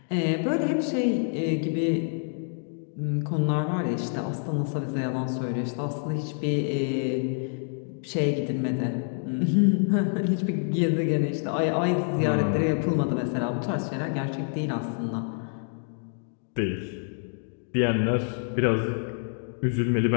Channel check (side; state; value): right; silent; 60 dB below the other